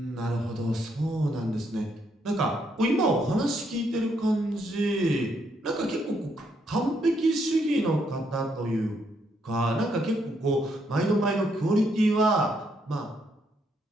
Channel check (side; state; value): both; normal; correlation 0.74